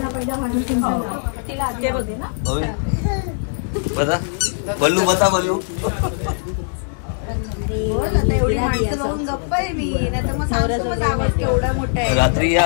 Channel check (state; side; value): silent; right; 66 dB below the other